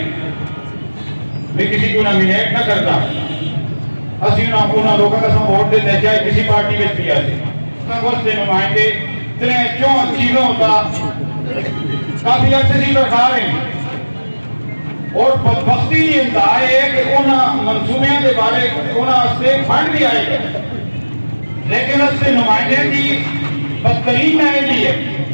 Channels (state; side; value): inverted; both; correlation -1.00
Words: میں کسی کو نامینیٹ نہ کرتا اسی انہوں لوگوں کا ووٹ دیتے ہیں چاہے کسی پارٹی میں بھی آتے سے نمائندے اتنے چون چیزوں کا کافی عرصے سے رکھا رہے ہیں اور بدبختی یہ انتہا ہے کہ انہوں منصوبیاں کے بارے انہوں سے فنڈ بھی آئے گا لیکن اس سے نمائندے کی بدترین نائدی ہے